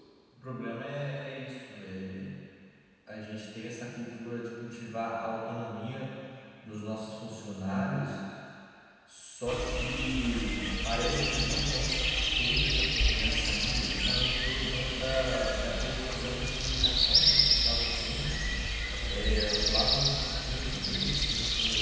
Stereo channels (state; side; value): identical; both; correlation 1.00